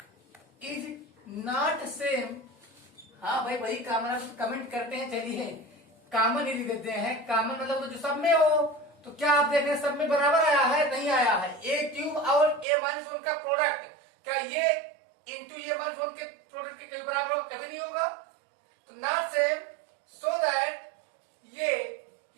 same। हाँ भाई वही कॉमन कमेंट करते हैं, चलिए कॉमन ही लिख देते हैं। कॉमन मतलब जो सब में हो, तो क्या आप देख रहे हैं सब में बराबर आया है, नहीं आया है। ए क्यूब और ए माइनस 1 का प्रोडक्ट, क्या ये इंटू ए माइनस 1 के प्रोडक्ट के कभी बराबर होगा, कभी नहीं होगा। तो नॉट सेम, सो दैट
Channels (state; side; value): drops out; left; at 12.7 s